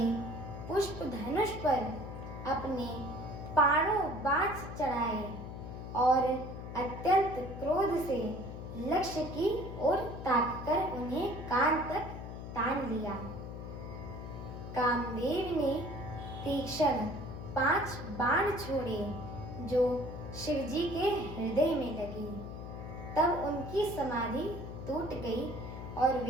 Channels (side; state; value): left; noise; hum, 9 dB below the sound